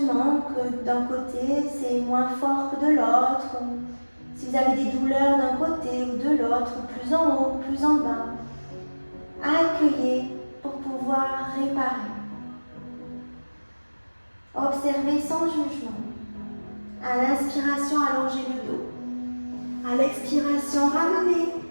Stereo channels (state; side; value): inverted; both; correlation -1.00